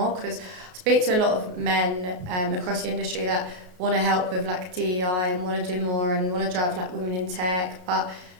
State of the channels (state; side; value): late; left; 33 ms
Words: because I speak to a lot of men across the industry that want to help with like DEI and want to do more and want to drive like women in tech, but